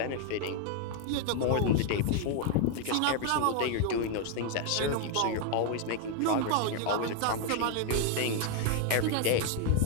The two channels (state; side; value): different; both; correlation 0.00